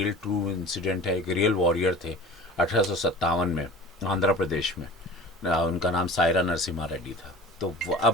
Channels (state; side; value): normal; both; correlation 0.39